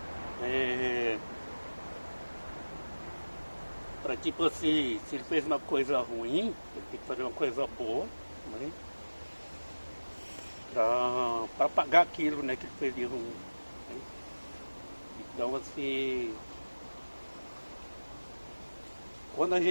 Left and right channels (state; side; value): inverted; both; correlation -1.00